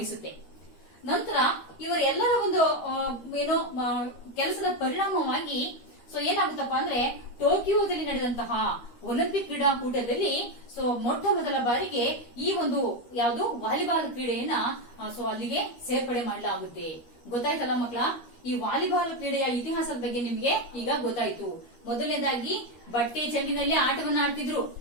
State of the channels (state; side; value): late; right; 13 ms